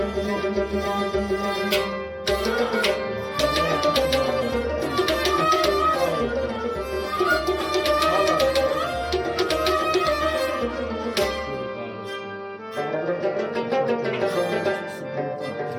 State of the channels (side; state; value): both; identical; correlation 1.00